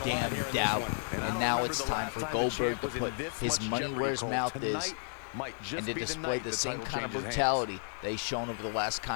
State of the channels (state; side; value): silent; right; digital silence